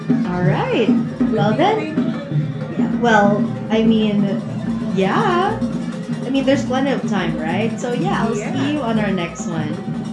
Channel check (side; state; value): both; identical; correlation 1.00